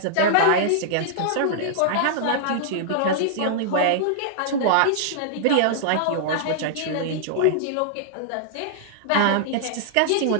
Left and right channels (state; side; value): different; both; correlation -0.01